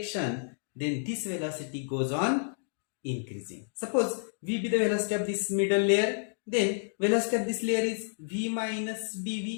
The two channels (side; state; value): right; silent; digital silence